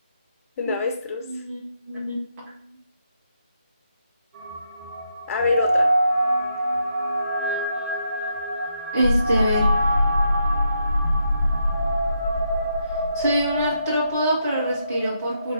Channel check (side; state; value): both; inverted; correlation -0.79